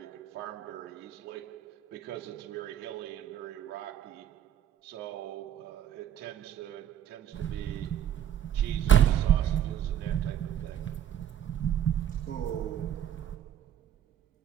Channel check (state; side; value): quieter; left; 10.2 dB